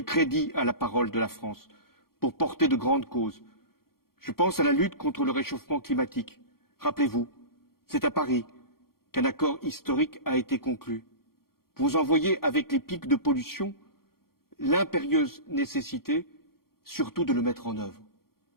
crédit à la parole de la France pour porter de grandes causes. Je pense à la lutte contre le réchauffement climatique. Rappelez-vous, c'est à Paris qu'un accord historique a été conclu. Vous en voyez avec les pics de pollution l'impérieuse nécessité surtout de le mettre en œuvre.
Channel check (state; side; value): late; right; 0.93 ms